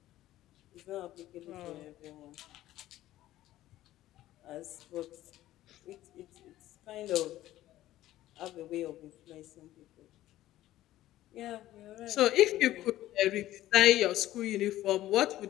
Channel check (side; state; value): right; quieter; 14.6 dB